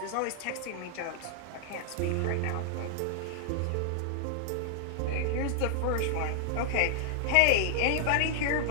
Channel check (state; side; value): different; both; correlation -0.01